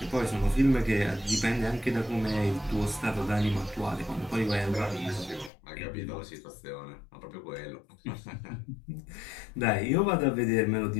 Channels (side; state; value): right; drops out; at 5.5 s